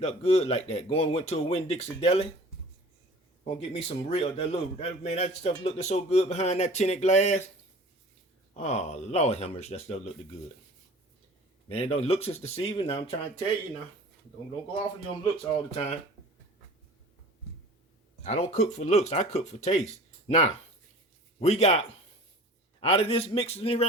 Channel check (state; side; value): normal; both; correlation 0.43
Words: up good like that. Went to a Winn-Dixie deli. Gonna get me some real, that stuff looked so good behind that tinted glass. Oh, Lord have mercy, that stuff looked good. Man, don't looks is deceiving. Now I'm trying to tell you now. Don't go off of your looks all the time. I don't cook for looks, I cook for taste. Now, we got, out of this mixing